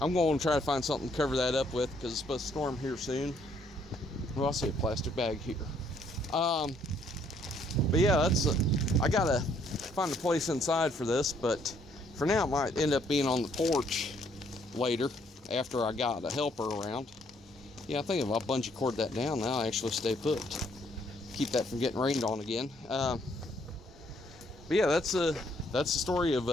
going to try to find something to cover that up with because it's supposed to storm here soon. Well, I see a plastic bag here. But yeah, I gotta find a place inside for this, but for now it might end up being on the porch later after I got a helper around. Yeah, I think if I bungee cord that down now, I actually stay put. Keep that from getting rained on again. But yeah, that's the story of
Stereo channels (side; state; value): both; normal; correlation 0.67